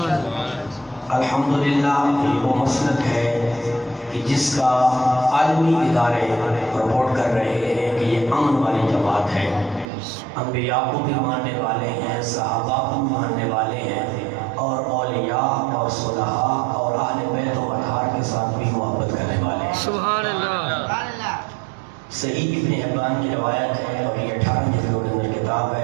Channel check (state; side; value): drops out; left; at 9.9 s